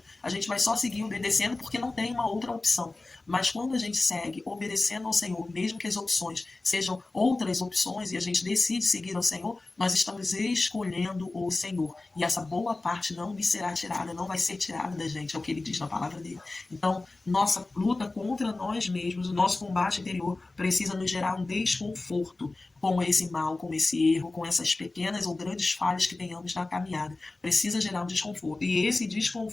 A gente vai só seguir obedecendo porque não tem uma outra opção. Mas quando a gente segue obedecendo ao Senhor, mesmo que as opções sejam outras opções e a gente decide seguir ao Senhor, nós estamos escolhendo o Senhor. E essa boa parte não me será tirada, não vai ser tirada da gente, é o que ele diz na palavra dele. Então, nossa luta contra nós mesmos, o nosso combate interior precisa nos gerar um desconforto com esse mal, com esse erro, com essas pequenas ou grandes falhas que tenhamos na caminhada. Precisa gerar um desconforto. E esse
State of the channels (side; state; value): right; quieter; 3.2 dB